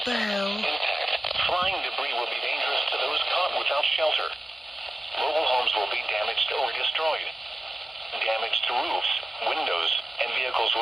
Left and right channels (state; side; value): normal; both; correlation 0.94